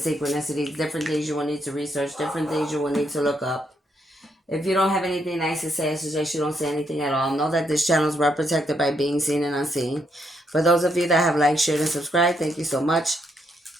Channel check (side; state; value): both; normal; correlation 0.76